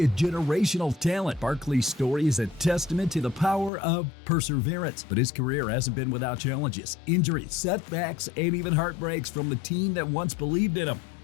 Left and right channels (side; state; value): right; drops out; at 3.7 s